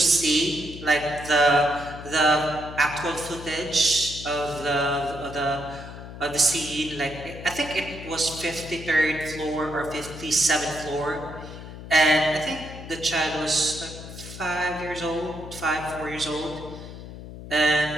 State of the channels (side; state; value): left; noise; hum, 12 dB below the sound